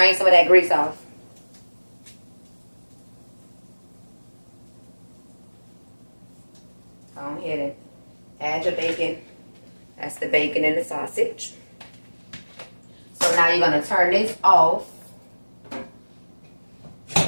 some of that grease off. Go ahead and add your bacon. That's the bacon and the sausage. So now you're going to turn this off. You're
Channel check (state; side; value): inverted; both; correlation -1.00